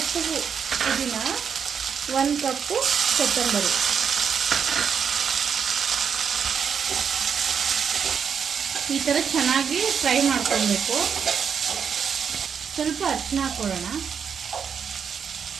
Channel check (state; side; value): quieter; left; 7.0 dB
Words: ಪುದೀನ, 1 ಕಪ್ಪು ಕೊತ್ತಂಬರಿ. ಈ ಥರ ಚೆನ್ನಾಗಿ ಫ್ರೈ ಮಾಡ್ಕೊಳ್ಬೇಕು. ಸ್ವಲ್ಪ ಅರಿಶಿನ ಹಾಕ್ಕೊಳ್ಳೋಣ.